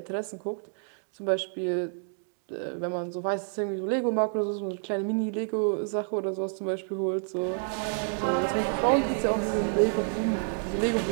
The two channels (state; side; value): silent; left; digital silence